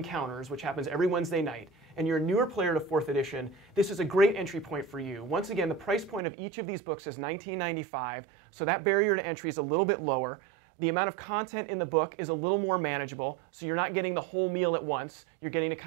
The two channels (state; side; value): drops out; left; at 6.2 s